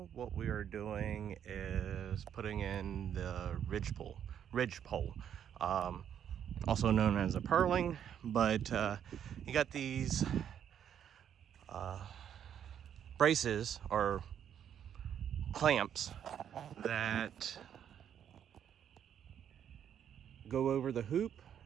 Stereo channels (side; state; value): left; quieter; 9.2 dB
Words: what we are doing is putting in the ridgepole, also known as a purling. But you got these braces or clamps that go over the hoop,